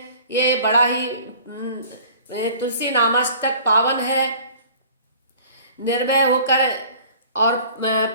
ये बड़ा ही तुलसी नामाष्टक पावन है। निर्भय होकर और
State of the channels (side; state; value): both; inverted; correlation -0.48